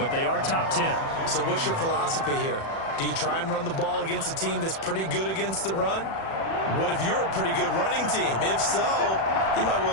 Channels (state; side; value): late; right; 36 ms